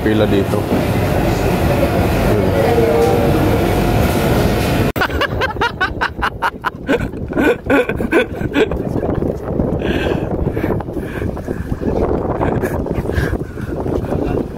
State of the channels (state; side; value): identical; both; correlation 1.00